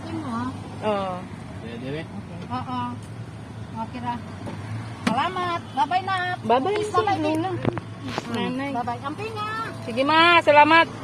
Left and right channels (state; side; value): identical; both; correlation 1.00